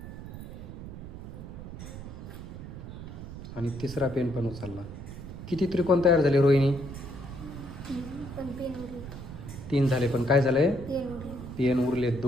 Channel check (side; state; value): right; noise; rumble, 11 dB below the sound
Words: आणि तिसरा पेन पण उचलला. किती त्रिकोण तयार झाले रोहिणी? 3 झाले, पण काय झालंय? पेन उरले